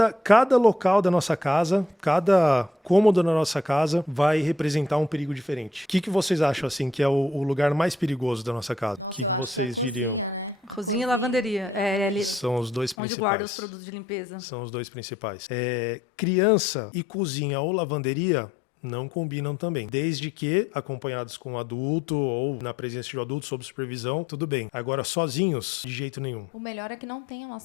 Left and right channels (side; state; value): right; drops out; at 13.0 s